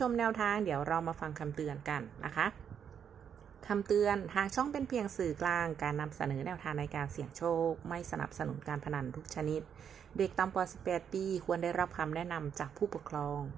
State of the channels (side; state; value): left; quieter; 8.0 dB